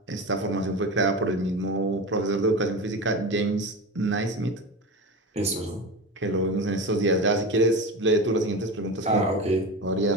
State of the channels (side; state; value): both; normal; correlation 0.26